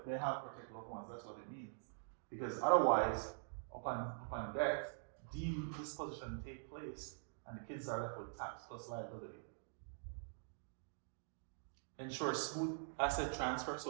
they have protect loved ones, that's what it means. Because otherwise, upon death, deemed disposition take place and the kids are left with tax plus liability. Ensure smooth asset transfer,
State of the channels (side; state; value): left; silent; digital silence